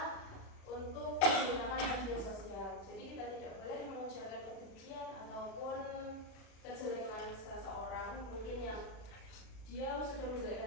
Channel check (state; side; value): late; right; 36 ms